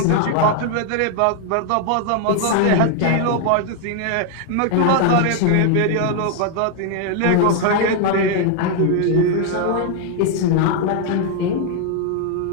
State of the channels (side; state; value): both; different; correlation 0.00